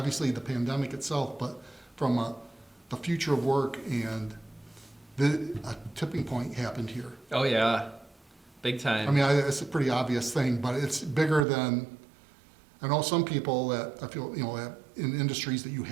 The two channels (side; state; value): left; drops out; at 11.5 s